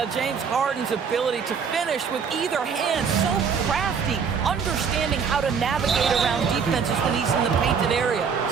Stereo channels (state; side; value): quieter; left; 6.3 dB